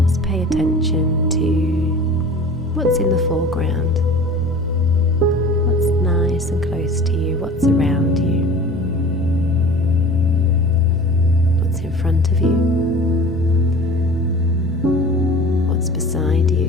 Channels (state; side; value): normal; both; correlation 0.40